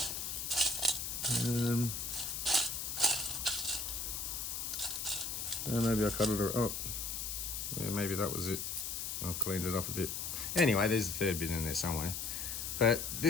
Maybe I cut it. Oh, yeah, maybe that was it. I've cleaned it up a bit. Anyway, there's a third bit in there somewhere. But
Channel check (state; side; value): noise; left; hiss, 4 dB below the sound